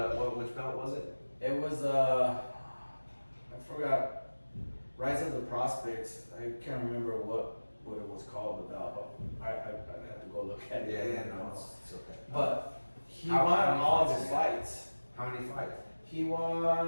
belt was it? It was I forgot. Rise of the Prospects. I can't remember what it was called, the belt. But I have to go look at it. It's okay. But he How won many all fights his did he have? fights. How many fights? He won,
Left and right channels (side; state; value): both; inverted; correlation -1.00